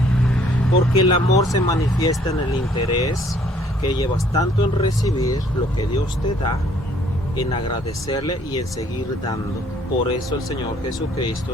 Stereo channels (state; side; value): normal; both; correlation 0.61